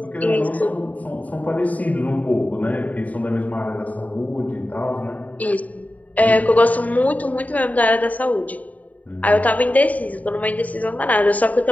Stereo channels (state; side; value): late; right; 0.072 ms